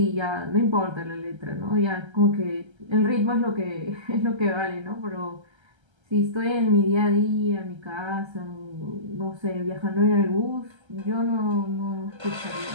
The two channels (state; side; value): late; left; 1.3 ms